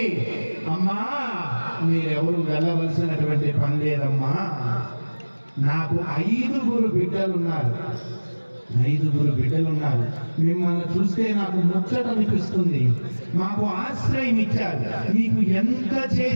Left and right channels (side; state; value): both; inverted; correlation -1.00